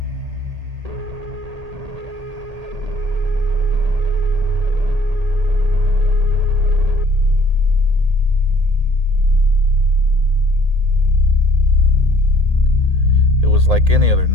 It was like any other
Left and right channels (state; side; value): late; left; 1.8 ms